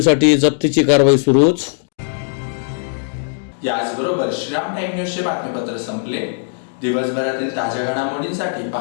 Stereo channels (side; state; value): right; silent; digital silence